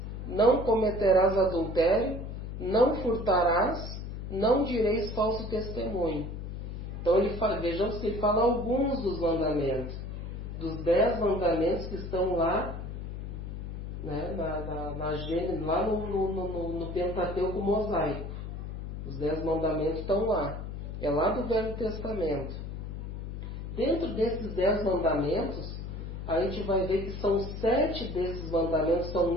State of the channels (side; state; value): left; noise; hum, 7 dB below the sound